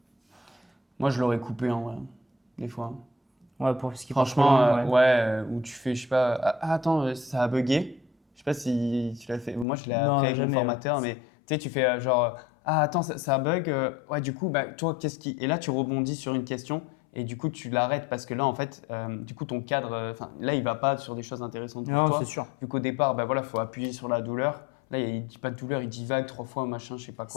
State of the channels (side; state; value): right; drops out; at 9.7 s